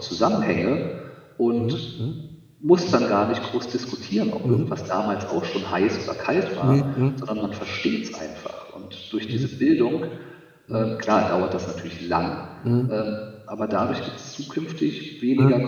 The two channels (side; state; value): both; identical; correlation 1.00